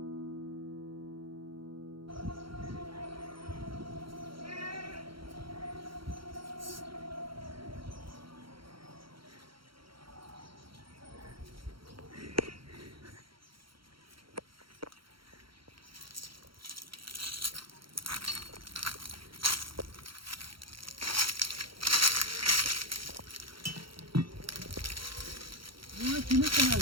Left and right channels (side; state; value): left; late; 0.74 ms